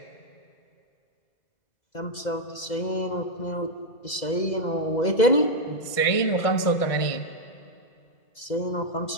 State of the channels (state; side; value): late; right; 2.0 ms